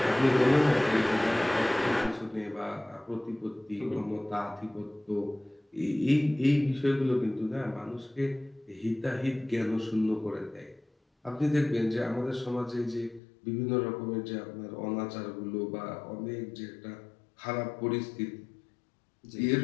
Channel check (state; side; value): drops out; right; at 13.2 s